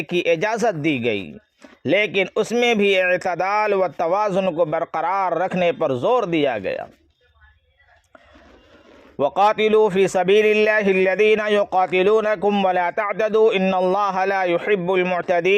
کی اجازت دی گئی، لیکن اس میں بھی اعتدال و توازن کو برقرار رکھنے پر زور دیا گیا۔ وَقَاتِلُوا فِي سَبِيلِ اللَّهِ الَّذِينَ يُقَاتِلُونَكُمْ وَلَا تَعْتَدُوا إِنَّ اللَّهَ لَا يُحِبُّ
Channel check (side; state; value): both; identical; correlation 1.00